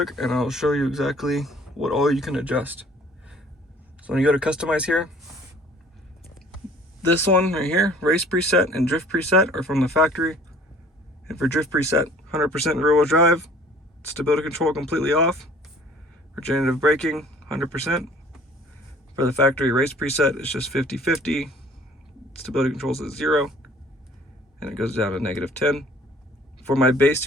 and I'll show you exactly what all you can adjust. So when you go to customize here, this one right here, race preset and drift preset are from the factory. And for drift preset, 100% rear wheel drive, stability control completely off. Regenerative braking, 100%. For the factory race preset, it's just 50-50. Stability controls at 0. And it goes down to -10. For my base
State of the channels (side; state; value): both; normal; correlation 0.53